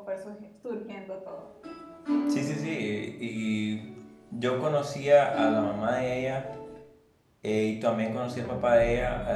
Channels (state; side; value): identical; both; correlation 1.00